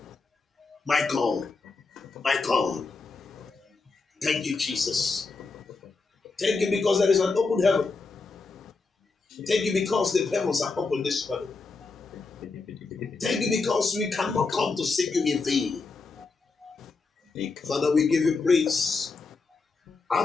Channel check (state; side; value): quieter; right; 4.1 dB